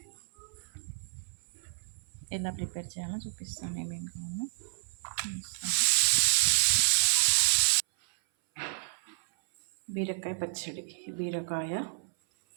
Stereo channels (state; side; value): silent; left; 57 dB below the other